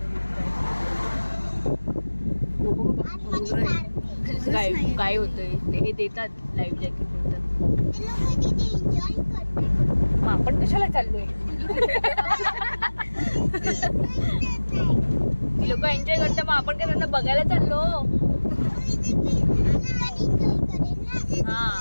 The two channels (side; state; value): both; inverted; correlation -1.00